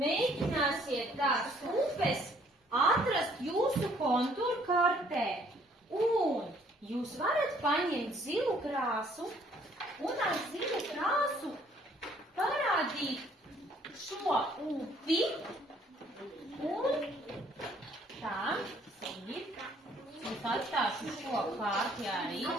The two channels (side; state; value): both; normal; correlation 0.62